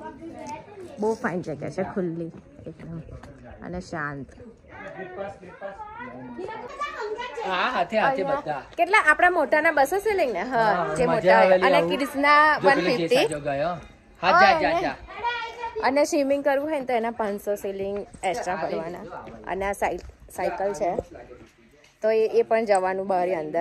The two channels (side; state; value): both; identical; correlation 1.00